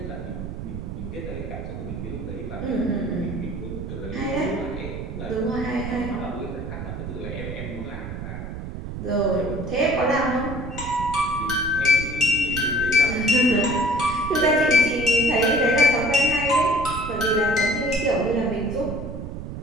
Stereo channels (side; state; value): right; noise; rumble, 8 dB below the sound